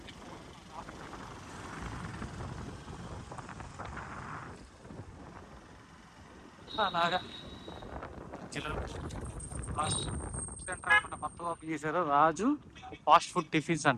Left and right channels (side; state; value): both; identical; correlation 1.00